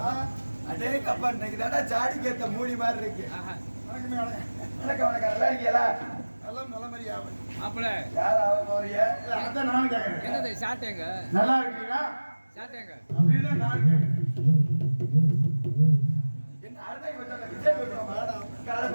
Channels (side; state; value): both; inverted; correlation -1.00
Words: கப்பா இன்னைக்கு தானே சாடி கேத்த மூடி மாதிரி இருக்கு. வணக்கம் வணக்கம். நல்லா இருக்கீங்களா? எல்லாம் நல்ல மாதிரி ஆகும். மாப்பிள யார் ஆக போறீங்க? அதான் நானும் கேட்கறேன். என்னது ஷார்ட்டேங்க? நல்லா இருக்கீங்களா? ஷார்ட்டேங்க. அப்படின்னா நானும் கேட்கறேன். என்ன அர்த்தம் கொஞ்சம் விஜய் போடுறோம். கால